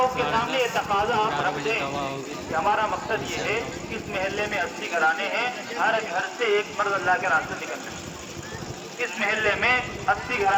کے سامنے یہ تقاضا آپ رکھ دیں کہ ہمارا مقصد یہ ہے کہ اس محلے میں 80 گھرانے ہیں، ہر گھر سے ایک مرد اللہ کے راستے نکل جائے۔ اس محلے میں 80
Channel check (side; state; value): both; identical; correlation 1.00